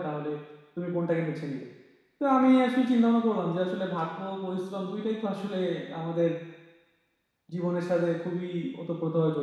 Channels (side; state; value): both; identical; correlation 1.00